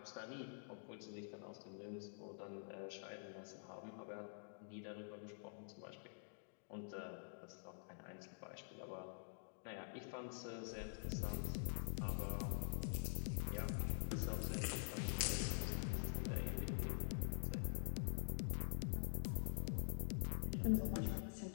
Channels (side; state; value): right; silent; digital silence